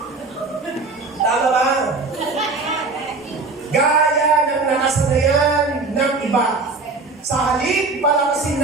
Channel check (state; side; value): quieter; left; 3.8 dB